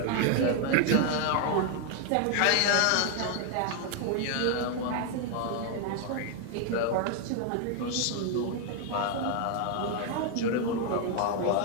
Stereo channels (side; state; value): both; different; correlation 0.00